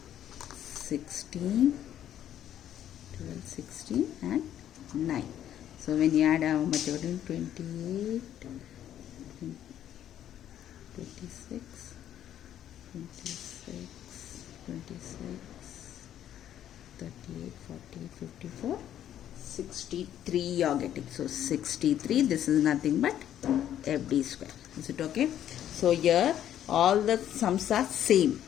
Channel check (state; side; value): quieter; right; 10.9 dB